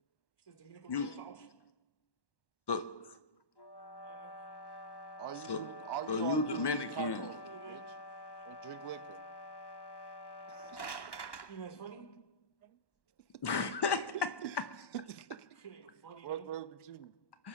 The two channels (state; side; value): late; right; 1.1 ms